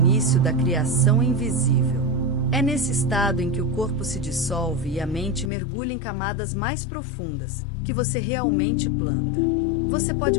da criação invisível. É nesse estado em que o corpo se dissolve e a mente mergulha em camadas mais profundas, que você realmente planta. Você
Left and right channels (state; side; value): drops out; right; at 5.5 s